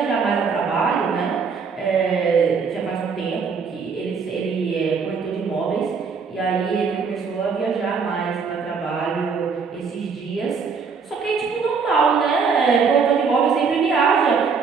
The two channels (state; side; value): quieter; left; 5.5 dB